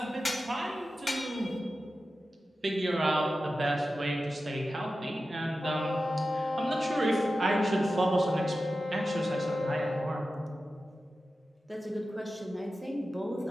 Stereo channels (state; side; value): normal; both; correlation 0.93